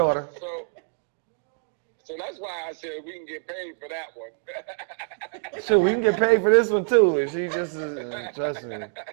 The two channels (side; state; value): left; silent; 61 dB below the other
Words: So that's why I said we can get paid for that one. Sure, we can get paid for this one too. And she just trust me. All